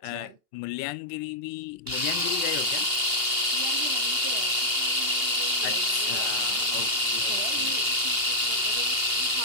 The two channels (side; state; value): left; late; 2.8 ms